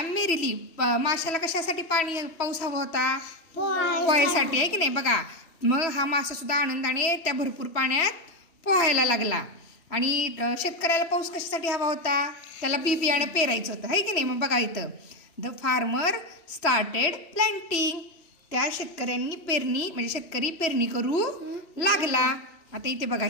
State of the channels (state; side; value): late; right; 3.0 ms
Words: मेरिली. माशाला कशासाठी पाऊस हवा होता? पोहायसाठी, आहे की नाही? बघा, मग हा मासा सुद्धा आनंदाने त्या भरपूर पाण्यात पोहायला लागला. आणि शेतकऱ्याला पाऊस कशासाठी हवा होता? त्याला बी बियाणं पेरायचं होतं, आहे की नाही? मग बघा इथं, द फार्मर स्टार्टेड प्लांटिंग. त्या शेतकऱ्यांनी म्हणजे शेतकरी पेरणी करू लागला. आता इथे बघा,